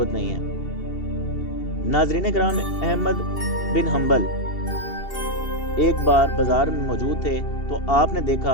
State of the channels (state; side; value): late; right; 2.7 ms